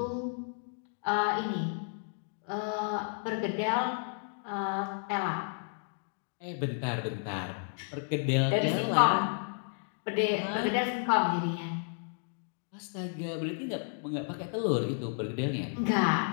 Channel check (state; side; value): silent; right; 56 dB below the other